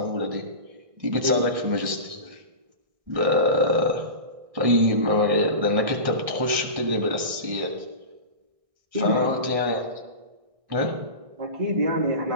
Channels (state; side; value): late; left; 1.6 ms